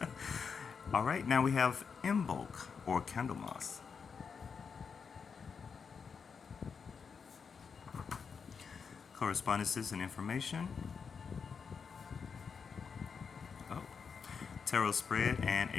All right, now we have Imbolc or Candlemas. Correspondences and information. Oh, tarot spread and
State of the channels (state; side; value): quieter; right; 5.9 dB